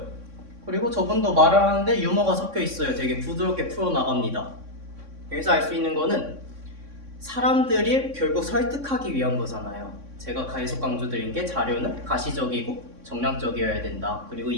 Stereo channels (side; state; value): left; late; 3.6 ms